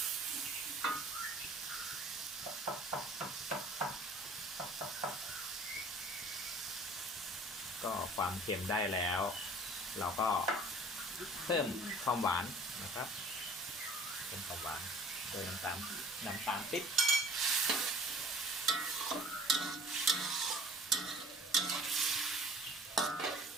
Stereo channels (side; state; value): both; normal; correlation 0.49